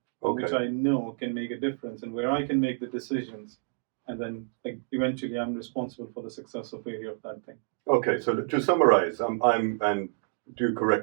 Okay. which I know can make a difference, and where I can make the decisions, and then eventually I'm responsible for the success of failure of that thing. Okay, so to summarize, I'm and do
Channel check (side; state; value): left; silent; digital silence